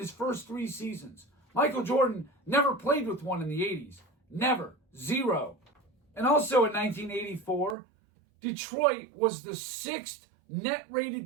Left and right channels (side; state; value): left; drops out; at 7.8 s